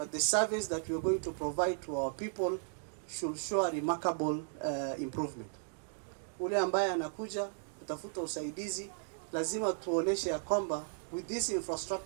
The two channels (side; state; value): left; silent; digital silence